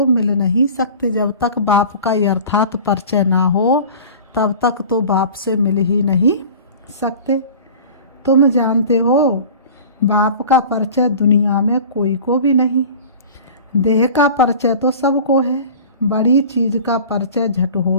मिल नहीं सकते। जब तक बाप का यथार्थ परिचय ना हो तब तक तो बाप से मिल ही नहीं सकते। तुम जानते हो बाप का परिचय दुनिया में कोई को भी नहीं। देह का परिचय तो सबको है, बड़ी चीज का परिचय झट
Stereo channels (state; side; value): inverted; both; correlation -0.40